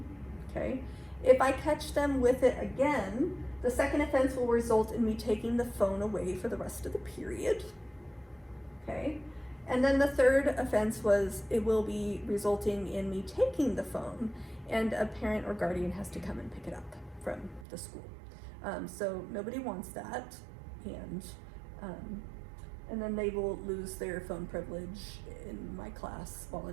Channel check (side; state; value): left; drops out; at 17.7 s